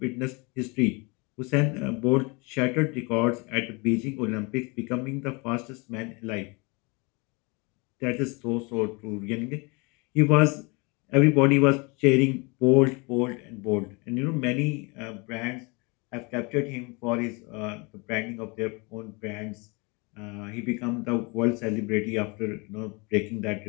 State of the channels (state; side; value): quieter; right; 28.8 dB